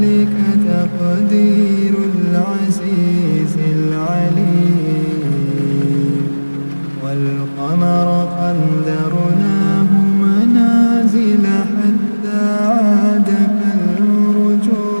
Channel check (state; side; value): inverted; both; correlation -1.00